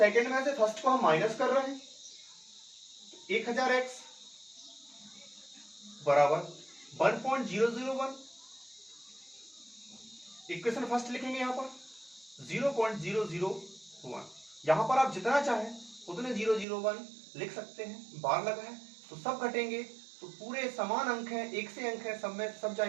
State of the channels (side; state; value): left; drops out; at 16.7 s